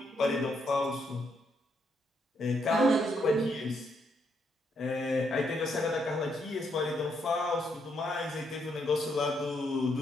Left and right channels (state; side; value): normal; both; correlation 0.76